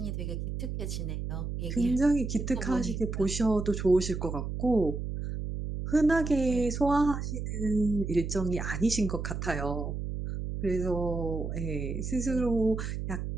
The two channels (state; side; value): noise; right; hum, 4 dB below the sound